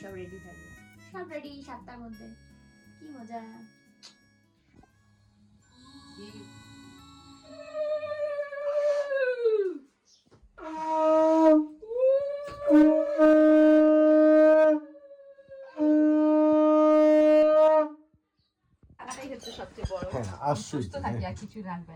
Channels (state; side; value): identical; both; correlation 1.00